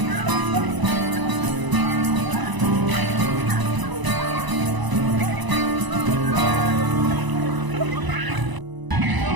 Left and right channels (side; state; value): left; late; 1.0 ms